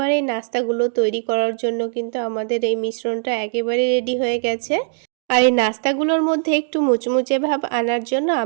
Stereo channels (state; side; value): silent; left; digital silence